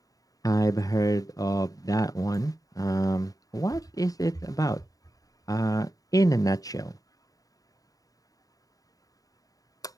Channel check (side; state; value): right; late; 0.17 ms